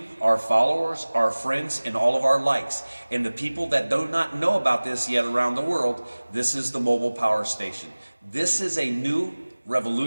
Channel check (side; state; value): both; inverted; correlation -1.00